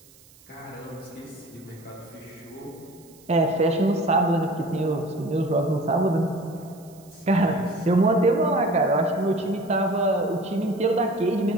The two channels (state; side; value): noise; right; hiss, 27 dB below the sound